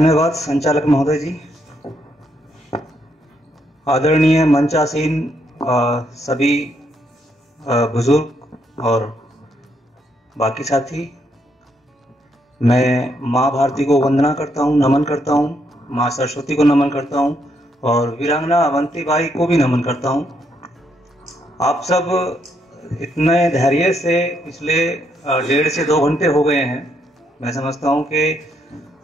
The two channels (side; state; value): both; normal; correlation 0.75